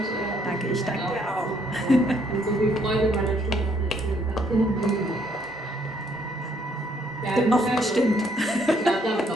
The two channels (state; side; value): normal; both; correlation 0.68